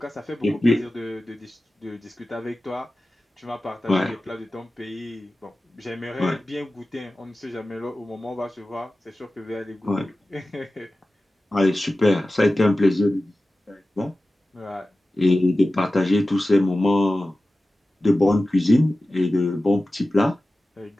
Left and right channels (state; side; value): normal; both; correlation 0.95